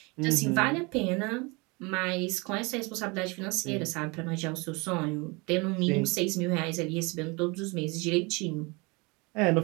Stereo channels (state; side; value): quieter; left; 27.5 dB